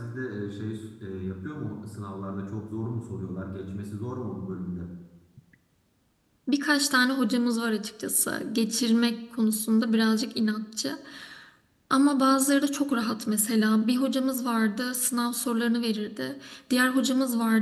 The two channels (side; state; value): both; identical; correlation 1.00